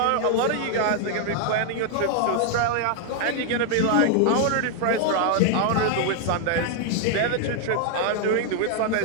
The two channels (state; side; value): different; both; correlation 0.00